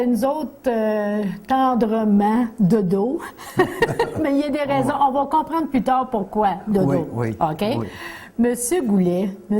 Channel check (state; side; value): identical; both; correlation 1.00